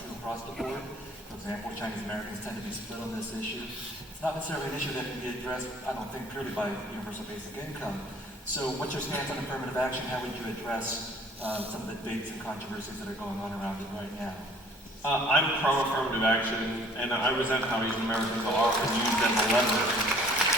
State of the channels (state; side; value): normal; both; correlation 0.55